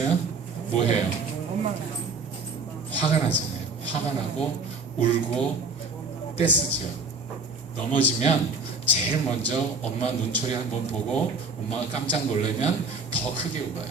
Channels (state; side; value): quieter; left; 3.9 dB